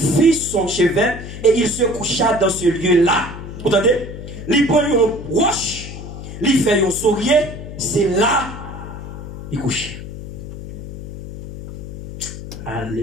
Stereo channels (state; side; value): noise; left; hum, 11 dB below the sound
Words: son chevet et il se coucha dans ce lieu-là. Vous entendez? Il prend une roche, il fait un sourire, c'est là il couche.